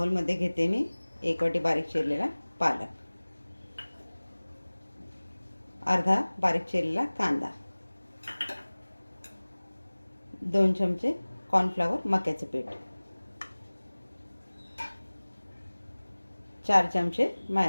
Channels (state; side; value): inverted; both; correlation -1.00